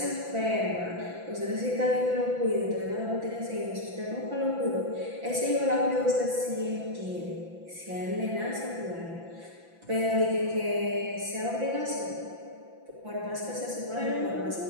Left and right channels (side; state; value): left; late; 5.9 ms